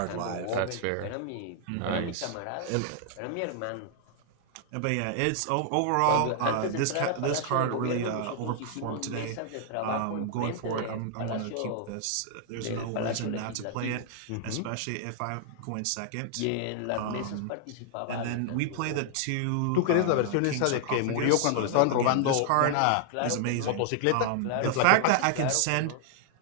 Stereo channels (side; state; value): both; different; correlation 0.00